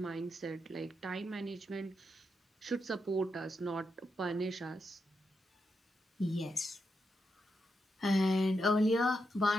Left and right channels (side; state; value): both; normal; correlation 0.84